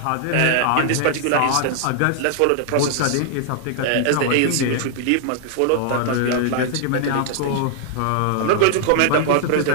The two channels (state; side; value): different; both; correlation -0.01